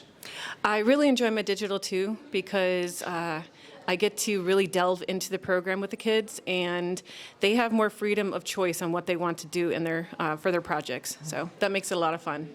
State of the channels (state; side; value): identical; both; correlation 1.00